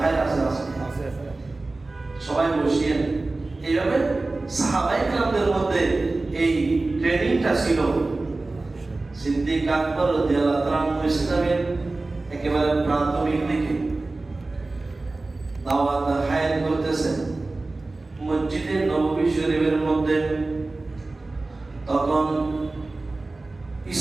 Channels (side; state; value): left; quieter; 3.2 dB